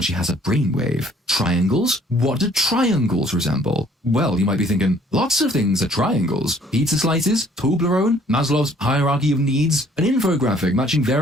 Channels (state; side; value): normal; both; correlation 0.59